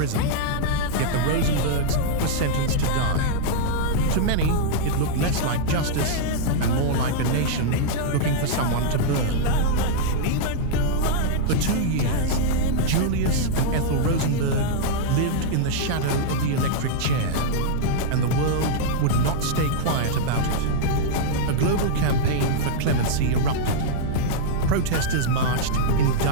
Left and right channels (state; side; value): different; both; correlation -0.02